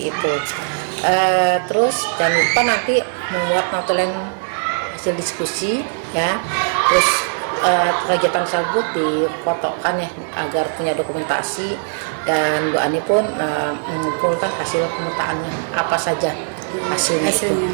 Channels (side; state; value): left; silent; digital silence